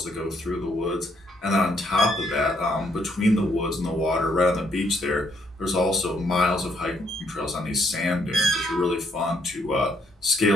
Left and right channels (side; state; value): both; normal; correlation 0.71